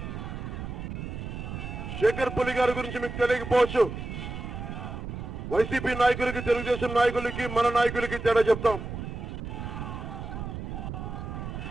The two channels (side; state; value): right; noise; rumble, 7 dB below the sound